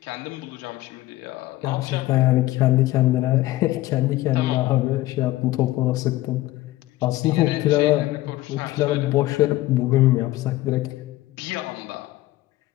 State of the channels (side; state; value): right; quieter; 17.1 dB